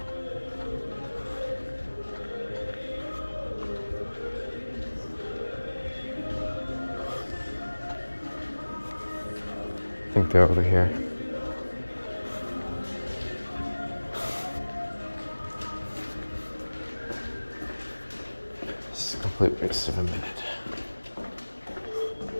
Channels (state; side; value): inverted; both; correlation -1.00